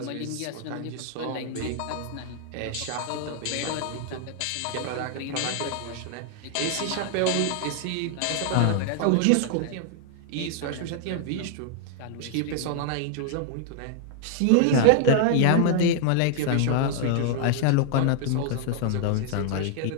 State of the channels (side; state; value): both; different; correlation 0.00